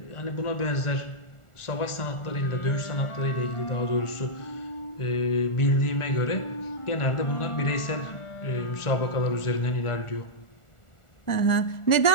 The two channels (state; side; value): late; right; 1.4 ms